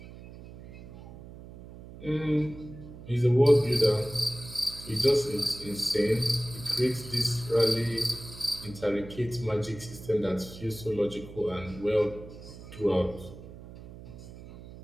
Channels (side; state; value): right; noise; hum, 16 dB below the sound